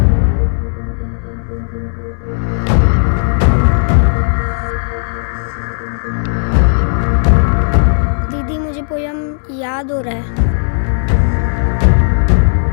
दीदी मुझे पोयम याद हो रहा है।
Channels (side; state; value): right; silent; digital silence